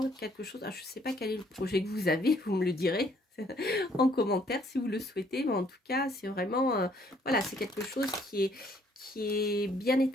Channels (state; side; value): normal; both; correlation 0.64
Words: quelque chose... je ne sais pas quel est le projet que vous avez, vous me le direz en commentaire si vous le souhaitez. Mais en tout cas, c'est vraiment... voilà, c'est quelque chose qui est bien